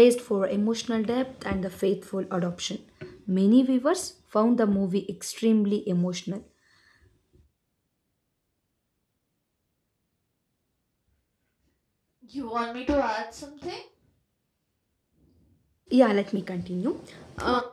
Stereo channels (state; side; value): identical; both; correlation 1.00